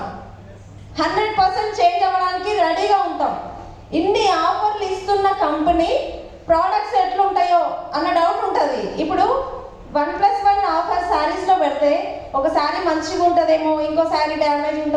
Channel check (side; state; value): both; identical; correlation 1.00